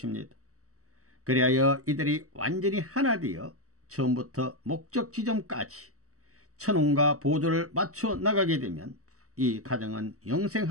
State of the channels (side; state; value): left; late; 0.65 ms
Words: 그리하여 이들이 완전히 하나 되어 처음부터 목적 지점까지 천운과 보조를 맞춰 나가게 되면 이 가정은